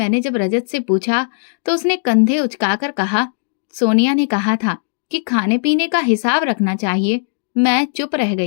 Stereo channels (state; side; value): silent; right; digital silence